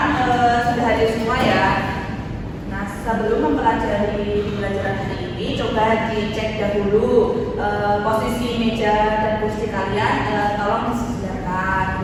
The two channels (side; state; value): both; identical; correlation 1.00